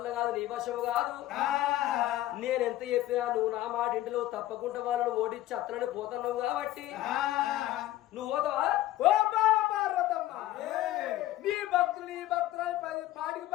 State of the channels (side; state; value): right; quieter; 15.0 dB